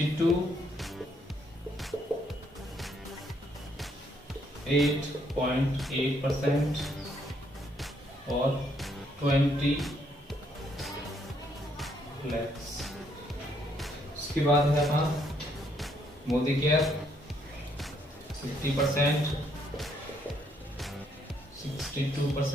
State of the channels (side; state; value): both; normal; correlation 0.71